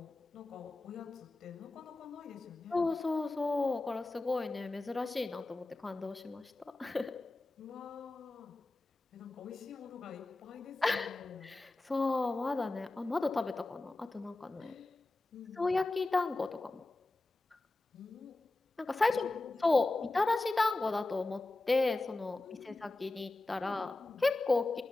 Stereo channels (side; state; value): right; quieter; 3.0 dB